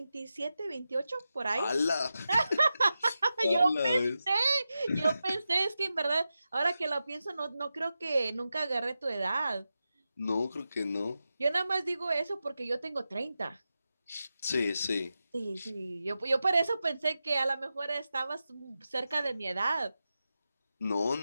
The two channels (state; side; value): inverted; both; correlation -0.91